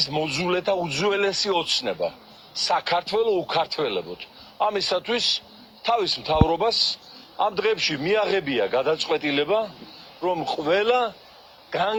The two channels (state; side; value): identical; both; correlation 1.00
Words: მოძულეთა უძველესი ოცნება საქართველოს უკართველებოდ. ამისათვის თავის მთავრობას ამ დღეებში მიაღებია გადაწყვეტილება, რომ ყველა